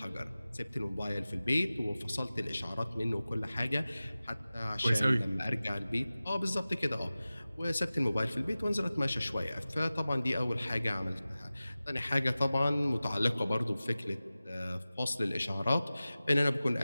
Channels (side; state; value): both; inverted; correlation -0.96